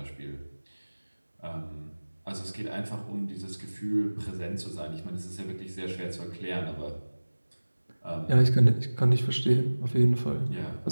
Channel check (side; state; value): both; inverted; correlation -1.00